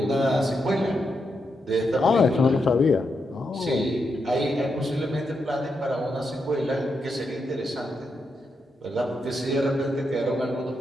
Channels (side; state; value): both; normal; correlation 0.83